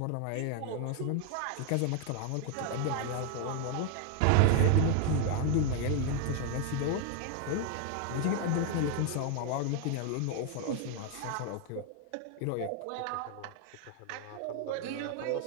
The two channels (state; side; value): different; both; correlation 0.01